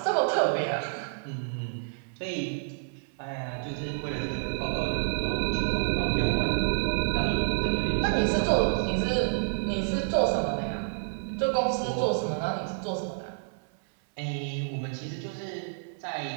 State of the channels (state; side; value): silent; left; 59 dB below the other